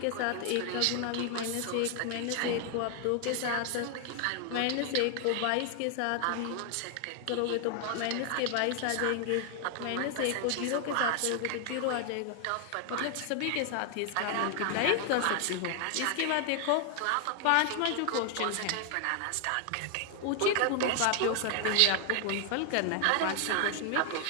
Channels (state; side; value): different; both; correlation 0.00